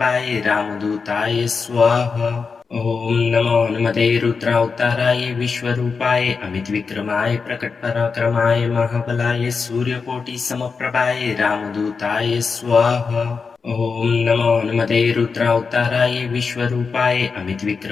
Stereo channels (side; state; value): right; quieter; 5.1 dB